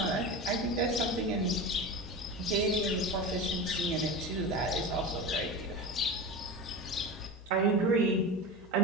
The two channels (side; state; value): both; normal; correlation 0.27